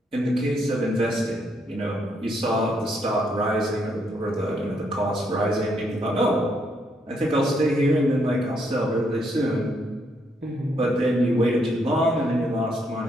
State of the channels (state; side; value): normal; both; correlation 0.74